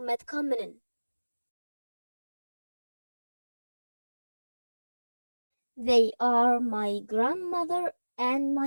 They are my grandmother and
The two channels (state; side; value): inverted; both; correlation -1.00